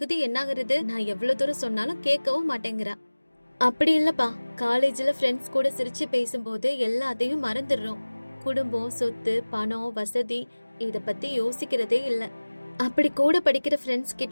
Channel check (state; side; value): inverted; both; correlation -1.00